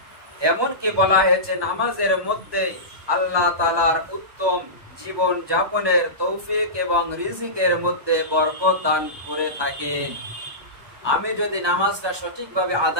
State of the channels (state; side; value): late; left; 1.2 ms